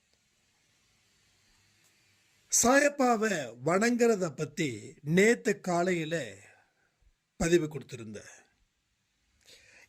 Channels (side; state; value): both; identical; correlation 1.00